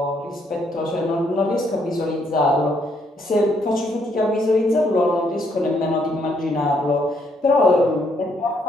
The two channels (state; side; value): normal; both; correlation 0.72